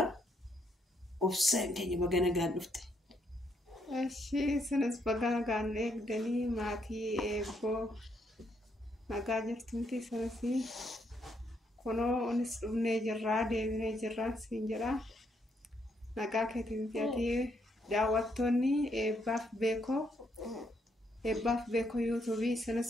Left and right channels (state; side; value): normal; both; correlation 0.75